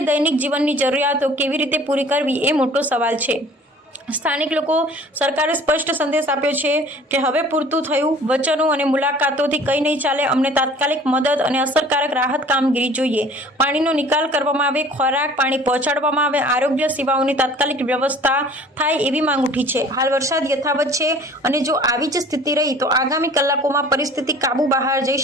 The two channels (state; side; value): normal; both; correlation 0.49